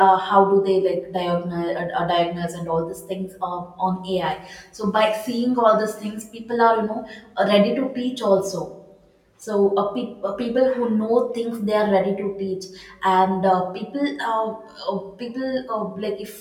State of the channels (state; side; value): identical; both; correlation 1.00